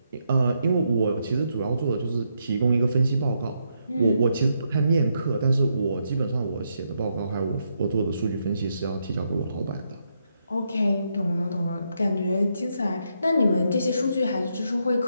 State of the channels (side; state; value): both; inverted; correlation -0.79